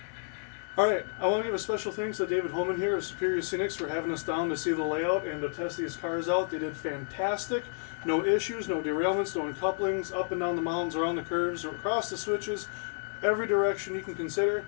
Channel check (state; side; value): silent; right; digital silence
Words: All right, I want to give a special thanks to David Holman here of Superior Scenics for having us down to see the layout and to test these cars out. They did fantastic. No issues, no derailments, no uncouplings, up and down the mountains, around the curves, or across the switches, every direction you can consider